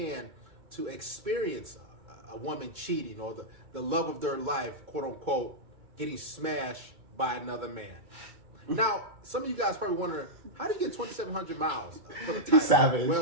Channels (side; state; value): left; late; 2.3 ms